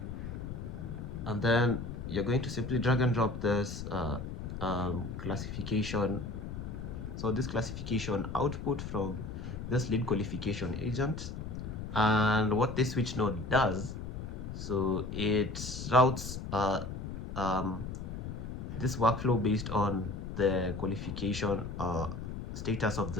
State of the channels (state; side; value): noise; left; rumble, 7 dB below the sound